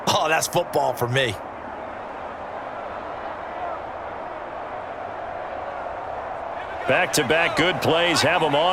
oh, that's football for me. Back-to-back good plays have them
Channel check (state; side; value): identical; both; correlation 1.00